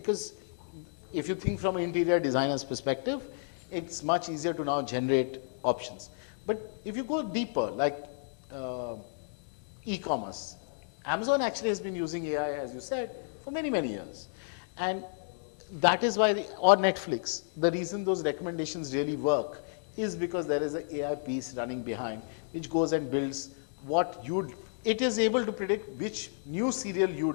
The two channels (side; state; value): right; silent; digital silence